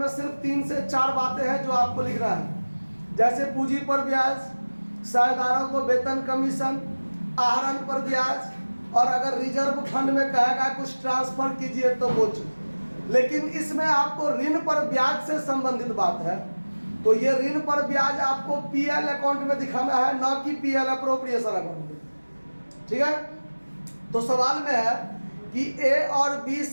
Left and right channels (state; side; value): inverted; both; correlation -1.00